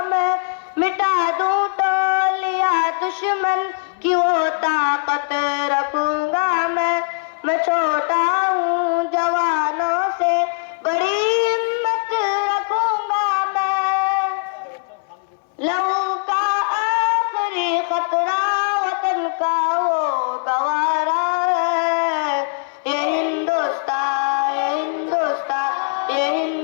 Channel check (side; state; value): right; silent; 65 dB below the other